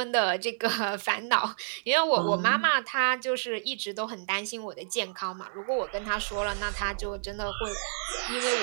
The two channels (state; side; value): silent; left; 58 dB below the other